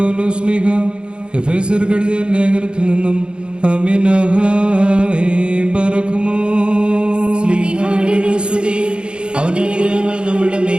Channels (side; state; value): left; late; 0.054 ms